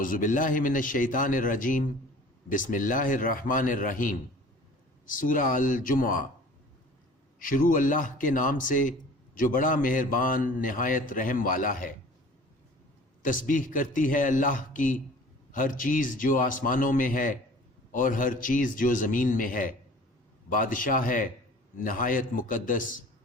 باللہ من الشیطان الرجیم، بسم اللہ الرحمن الرحیم۔ سورہ الجمعہ۔ شروع اللہ کے نام سے جو بڑا مہربان نہایت رحم والا ہے۔ تسبیح کرتی ہے اللہ کی ہر چیز جو آسمانوں میں ہے اور ہر چیز جو زمین میں ہے۔ بادشاہ ہے نہایت مقدس،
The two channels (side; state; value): both; normal; correlation 0.46